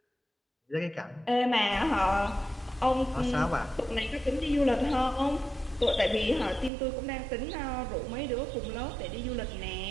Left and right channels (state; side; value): drops out; left; at 6.7 s